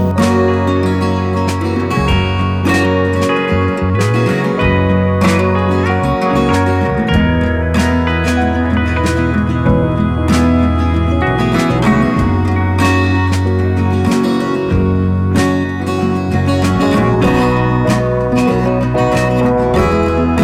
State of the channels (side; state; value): both; identical; correlation 1.00